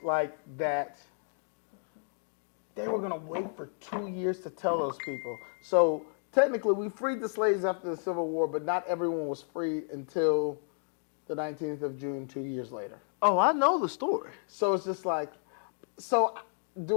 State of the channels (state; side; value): silent; right; digital silence